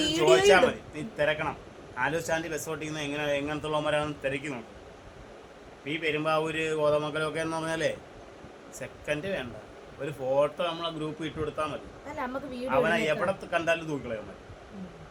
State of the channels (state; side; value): identical; both; correlation 1.00